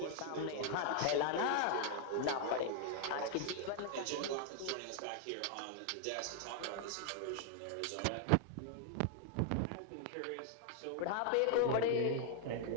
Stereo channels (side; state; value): both; different; correlation 0.00